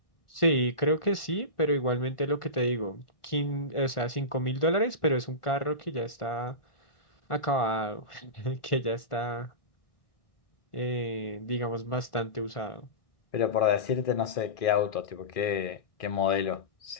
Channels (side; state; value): right; late; 1.4 ms